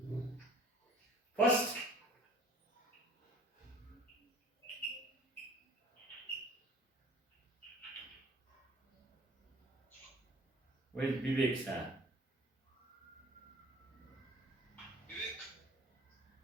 First, where is Vivek start?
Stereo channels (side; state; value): both; normal; correlation 0.50